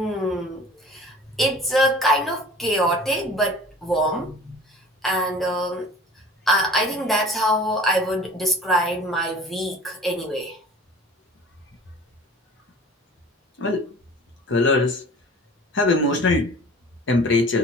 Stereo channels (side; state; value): both; normal; correlation 0.44